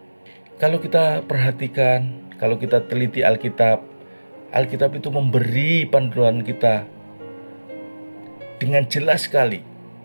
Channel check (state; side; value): inverted; both; correlation -1.00